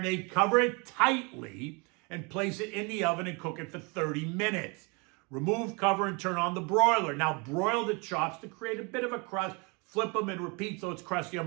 cover it tightly, and place it in the oven and cook it for 30 minutes. Remove cover and turn on the broiler. Now broil the chops to create a bit of a crust, flip them and repeat so it's crusty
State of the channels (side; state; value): left; quieter; 30.8 dB